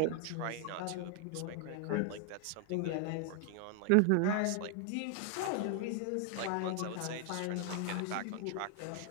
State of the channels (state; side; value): different; both; correlation 0.00